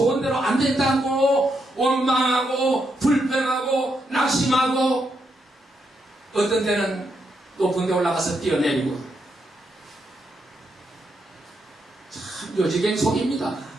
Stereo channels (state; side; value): normal; both; correlation 0.81